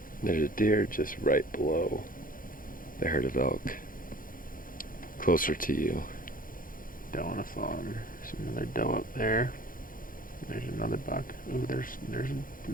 There's a deer just right below the herd of elk, closer to you. Doe on a fawn. There's another doe up there. There's another buck. Ooh,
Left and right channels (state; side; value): late; right; 0.40 ms